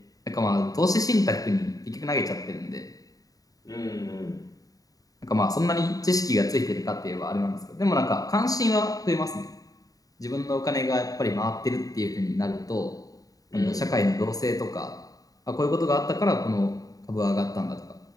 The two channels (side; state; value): right; late; 0.18 ms